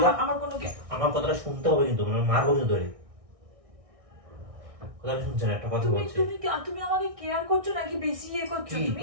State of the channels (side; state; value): left; late; 1.6 ms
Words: আমার কথাটা শুনতে হবে কিন্তু, মানে মারবো কিন্তু ধরে। কথাটা শুনছেন? একটা কথা বলছি। তুমি আমাকে কেয়ার করছো নাকি বেশি ইয়ে করছো? কি তুমি